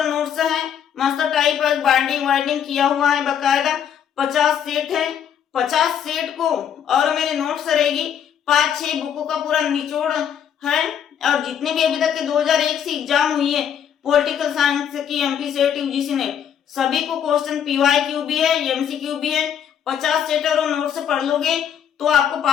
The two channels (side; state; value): right; quieter; 8.8 dB